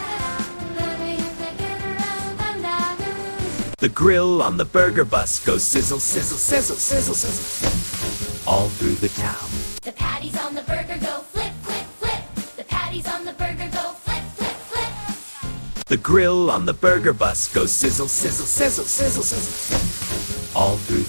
The grill on the burger bus goes sizzle, sizzle, sizzle, sizzle, sizzle, all through the town. The patties on the burger go flip, flip, flip. The patties on the burger go flip, flip, flip. The grill on the burger bus goes sizzle, sizzle, sizzle, sizzle, sizzle, all through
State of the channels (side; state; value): both; inverted; correlation -1.00